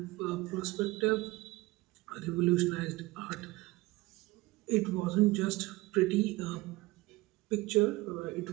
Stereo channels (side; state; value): left; quieter; 20.9 dB